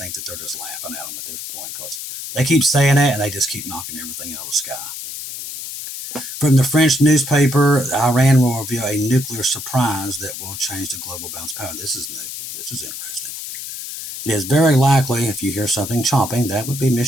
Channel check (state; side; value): noise; left; hiss, 9 dB below the sound